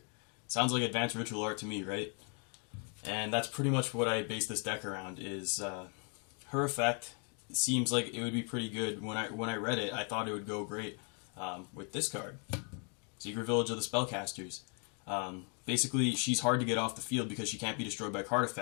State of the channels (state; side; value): quieter; right; 39.5 dB